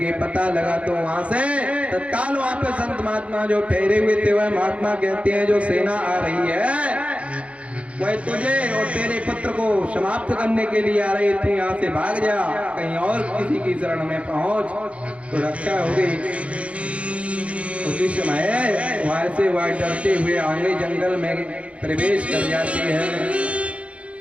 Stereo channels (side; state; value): left; late; 0.063 ms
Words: पता लगा तो वहां से तत्काल वहां पे संत महात्मा जो ठहरे हुए थे वह महात्मा कहते हैं जो सेना आ रही है वह तुझे और तेरे पुत्र को समाप्त करने के लिए आ रही थी, यहाँ से भाग जा, कहीं और किसी की शरण में पहुंच तो रक्षा होगी। उसी समय वहां से वह डरते हुए आगे जंगल में प्रवेश कर जाती है।